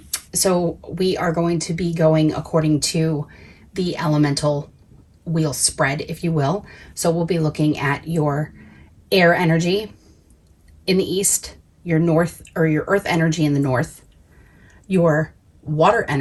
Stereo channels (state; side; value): identical; both; correlation 1.00